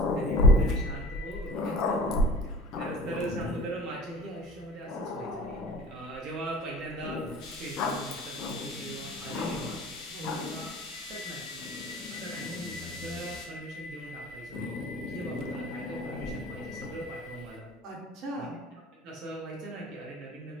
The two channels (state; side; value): normal; both; correlation 0.42